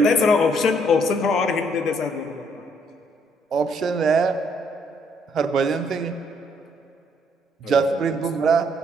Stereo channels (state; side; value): normal; both; correlation 0.68